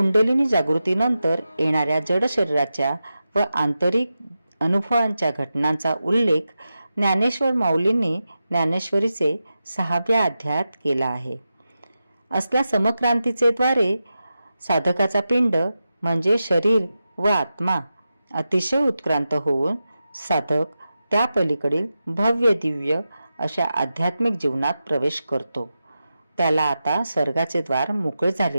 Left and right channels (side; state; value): both; inverted; correlation -0.91